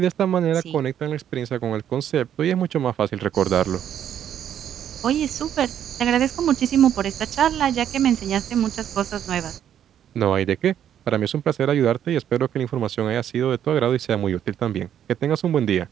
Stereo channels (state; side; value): quieter; left; 9.9 dB